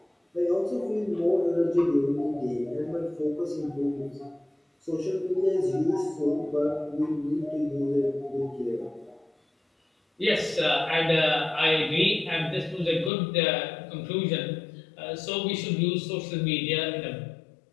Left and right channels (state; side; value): drops out; right; at 13.1 s